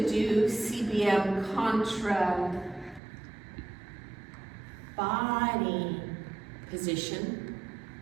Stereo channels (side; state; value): left; drops out; at 3.0 s